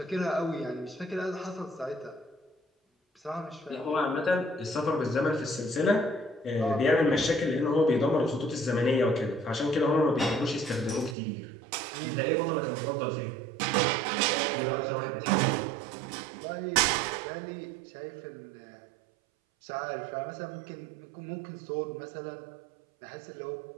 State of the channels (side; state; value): left; drops out; at 11.2 s